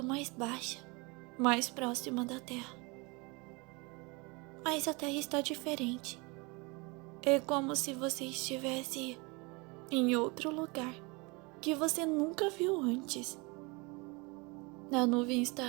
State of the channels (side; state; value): left; quieter; 27.8 dB